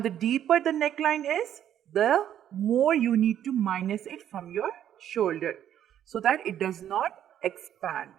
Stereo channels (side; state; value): left; quieter; 10.5 dB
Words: deeper the neckline is, the more you need to minus it from your shoulder so that it does not expand.